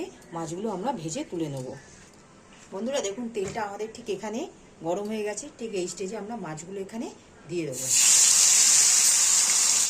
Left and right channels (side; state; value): both; identical; correlation 1.00